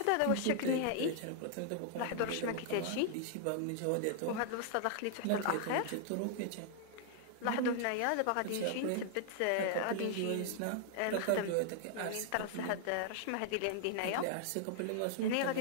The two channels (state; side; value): different; both; correlation -0.01